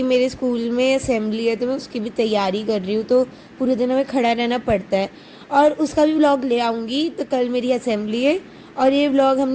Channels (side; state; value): both; identical; correlation 1.00